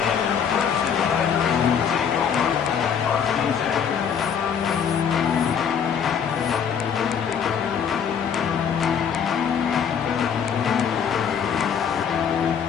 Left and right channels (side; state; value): right; quieter; 7.5 dB